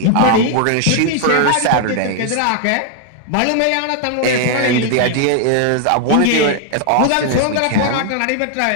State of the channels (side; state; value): both; different; correlation 0.00